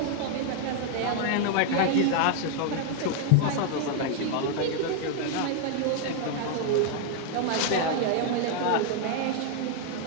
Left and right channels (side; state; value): both; different; correlation 0.00